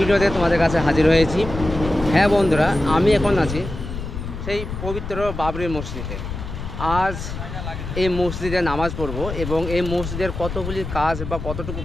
তোমাদের কাছে হাজির হয়েছি। হ্যাঁ বন্ধুরা, আমি এখন আছি সেই পবিত্র বাবরি মসজিদে। আজ এই মসজিদে নামাজ পড়ব এবং এই মসজিদের কতগুলি কাজ বা কতটুকু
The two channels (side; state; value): left; noise; rumble, 7 dB below the sound